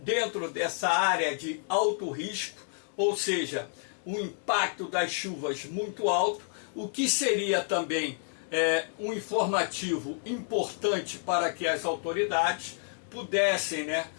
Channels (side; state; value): right; silent; 58 dB below the other